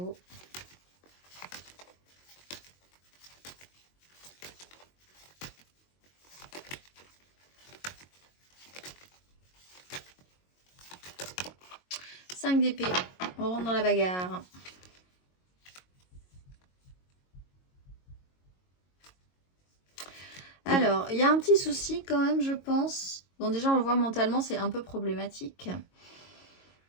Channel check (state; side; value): late; right; 22 ms